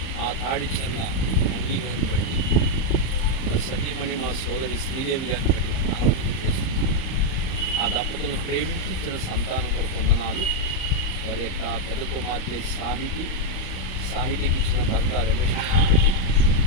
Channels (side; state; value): right; late; 38 ms